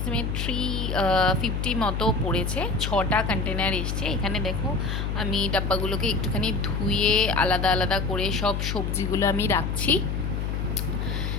350 মতো পড়েছে। 6টা কন্টেনার এসছে এখানে। দেখো, আমি ডাব্বাগুলোকে একটুখানি ধুয়ে আলাদা আলাদা করে সব সবজিগুলো আমি রাখছি।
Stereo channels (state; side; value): noise; left; hum, 1 dB below the sound